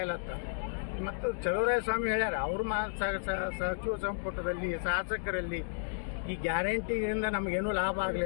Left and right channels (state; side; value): silent; right; digital silence